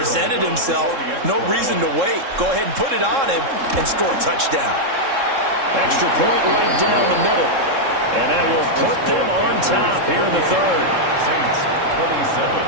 himself. No reason to wait. Go ahead and put it on him and score a touchdown. Extra point right down the middle. And that will put them on top here in the third. Saints 27.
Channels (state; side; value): late; left; 3.7 ms